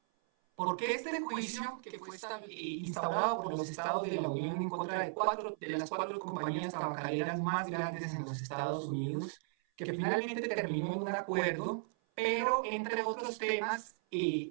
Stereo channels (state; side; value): silent; left; 54 dB below the other